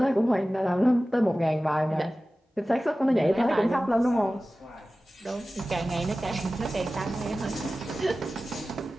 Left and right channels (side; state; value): both; normal; correlation 0.96